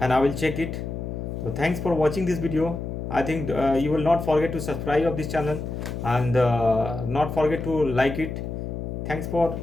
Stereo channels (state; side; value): noise; left; hum, 6 dB below the sound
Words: I will check it. So thanks for watching this video. I think you will not forget to subscribe of this channel, and not forget to like it. Thanks for